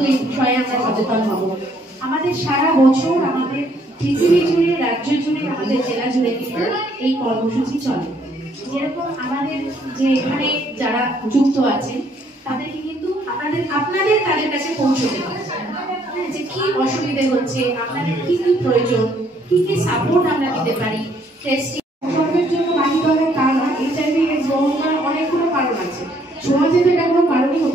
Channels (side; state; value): both; normal; correlation 0.66